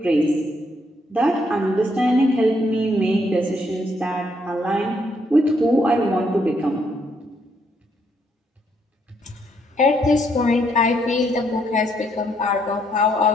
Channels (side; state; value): both; normal; correlation 0.72